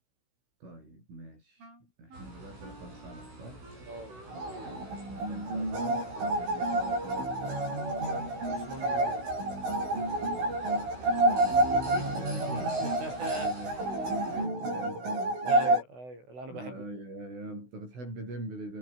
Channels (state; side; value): late; left; 16 ms